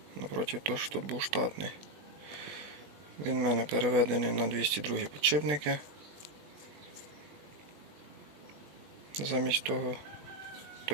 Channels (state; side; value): late; left; 20 ms